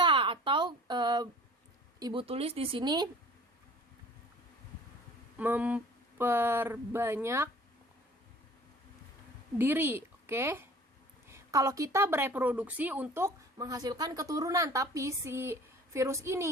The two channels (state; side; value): normal; both; correlation 0.47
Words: atau ibu tulis di sini memperbanyak diri. Oke. Kalau kita bereproduksi untuk menghasilkan keturunan, tapi si virus